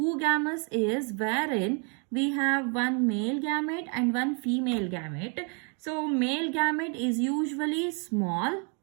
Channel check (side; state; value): left; quieter; 37.5 dB